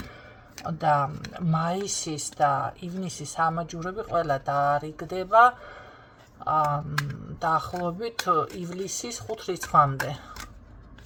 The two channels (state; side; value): identical; both; correlation 1.00